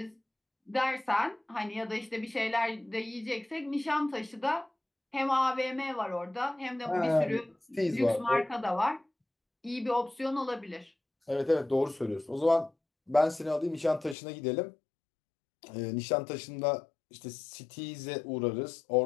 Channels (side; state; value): right; drops out; at 14.2 s